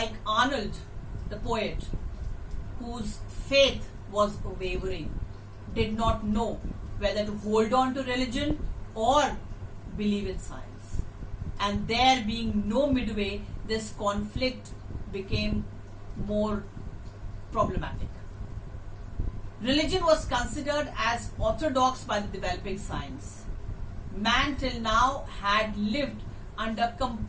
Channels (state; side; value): identical; both; correlation 1.00